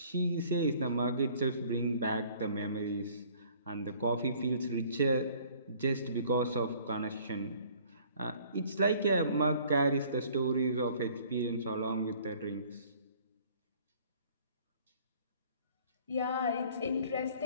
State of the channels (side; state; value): both; inverted; correlation -0.55